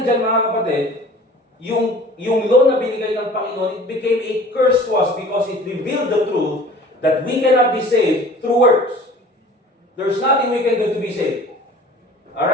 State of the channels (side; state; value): both; normal; correlation 0.46